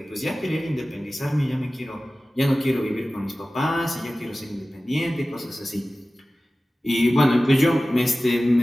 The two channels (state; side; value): normal; both; correlation 0.96